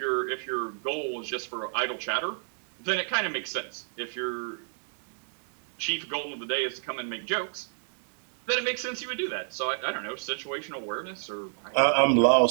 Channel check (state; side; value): silent; left; digital silence